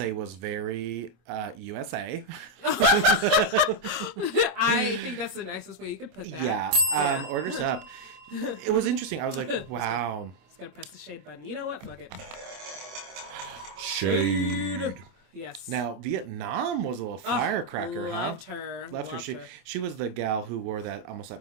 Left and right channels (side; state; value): left; late; 26 ms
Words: was very USA. I think that's the nicest way you could put that. Yeah. Orders up. It was interesting. I was like, wow. Just gotta press the shade button. You know what? Fuck it. Shade. Yes. Now, Vietnam was a little firecracker, loved her. Loved her. She was the gal who wore that almost